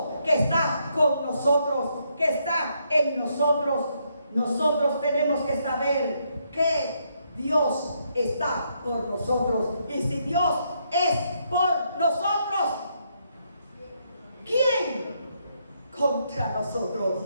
que está con nosotros, que está en nosotros. Nosotros tenemos que saber que Dios está por nosotros. Y si Dios es por nosotros, ¿quién contra nosotros?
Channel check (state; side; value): inverted; both; correlation -0.76